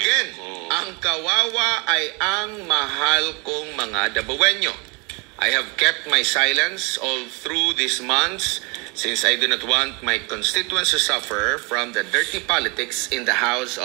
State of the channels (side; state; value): left; quieter; 29.6 dB